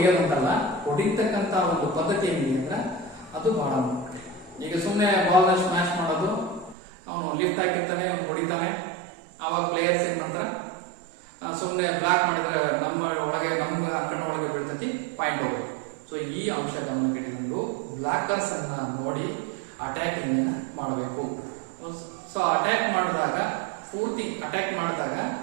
ಹೊಡಿತಕ್ಕಂತ ಒಂದು ಪದ್ಧತಿ ಏನಿದೆ ಅಂದ್ರೆ ಅದು ಬಹಳ ಮುಖ್ಯ. ಈಗ ಸುಮ್ಮನೆ ಬಾಲ್ನ ಸ್ಮ್ಯಾಶ್ ಮಾಡೋದು, ಅವನು ಲಿಫ್ಟ್ ಹಾಕಿರ್ತಾನೆ, ಹೊಡಿತಾನೆ, ಆವಾಗ ಪ್ಲೇಯರ್ಸ್ ಏನ್ ಮಾಡ್ತಾರ, ಸುಮ್ಮನೆ ಬ್ಲಾಕ್ ಮಾಡಿದ್ರೆ ನಮ್ಮ ಅಂಕಣ ಒಳಗೆ ಬೀಳ್ತತಿ, ಪಾಯಿಂಟ್ ಹೋಗ್ಬೇಕು. ಸೊ ಈ ಅಂಶ ಗಮನಕ್ಕಿಟ್ಟುಕೊಂಡು ಬ್ಲಾಕರ್ಸ್ ಅನ್ನ ನೋಡಿ ಅಟ್ಯಾಕಿಂಗ್ ಮಾಡಬೇಕು. ಸೊ ಅಟ್ಯಾಕ್ ಮಾಡಿದಾಗ ಪೂರ್ತಿ ಅಟ್ಯಾಕ್ ಮಾಡಿದಾಗ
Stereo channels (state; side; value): drops out; left; at 6.8 s